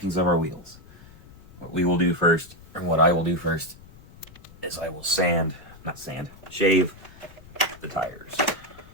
of our wheels. What we will do first, or what I will do first, is I will shave the tires.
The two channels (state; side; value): noise; left; rumble, 21 dB below the sound